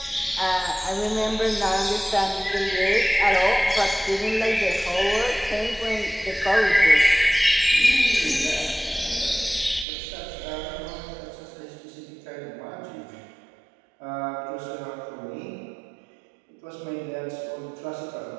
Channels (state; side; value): drops out; left; at 9.9 s